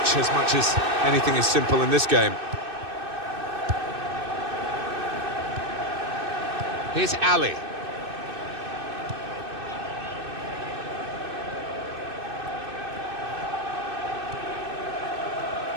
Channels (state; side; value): late; left; 2.6 ms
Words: as much as anything is simple in this game. Here's Ali.